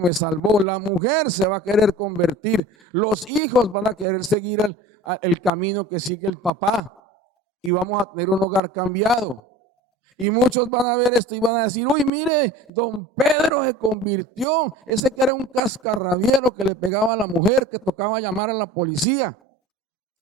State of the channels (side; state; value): both; normal; correlation 0.40